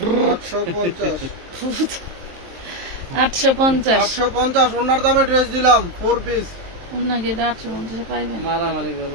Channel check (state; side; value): late; left; 23 ms